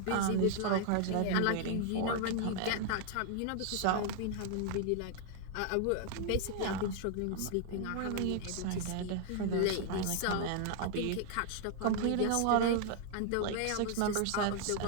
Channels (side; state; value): both; different; correlation 0.00